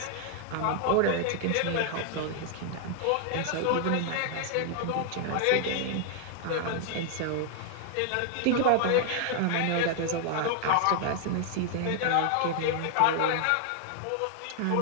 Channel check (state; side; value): different; both; correlation 0.00